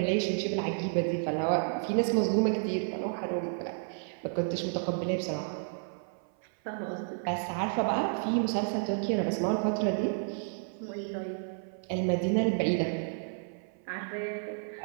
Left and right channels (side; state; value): left; silent; 55 dB below the other